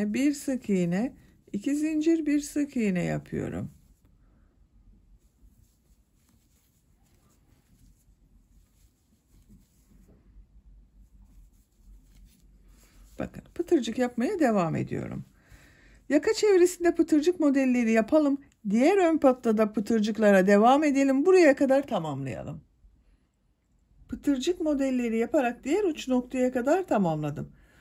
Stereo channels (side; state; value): both; identical; correlation 1.00